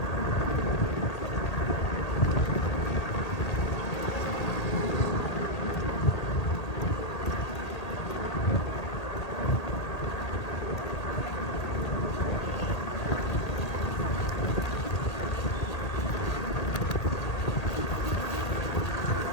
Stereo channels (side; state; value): right; late; 1.8 ms